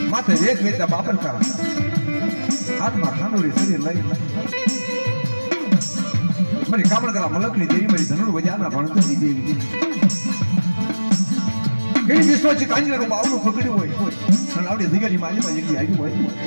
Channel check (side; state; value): both; inverted; correlation -1.00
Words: माते वेद वेद बापर का हाथ में खानोरी सरी लई मेरी कामण करा मलकनी देवी मेरी धनुर बजाना भणतनी देवी केडी विश्वाची कांजी रो बावनो पकड्यो होय અને આવડી જગ્યાની માલીમાં જગ્યા આવી હોય